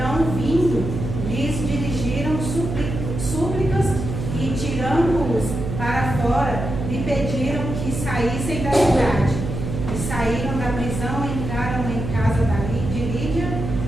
vindo, lhes dirigiram súplicas e, tirando-os para fora, lhe pediram que saíssem da cidade. E saíram da prisão, entraram em casa de Lídia,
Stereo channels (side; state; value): right; noise; hum, 5 dB below the sound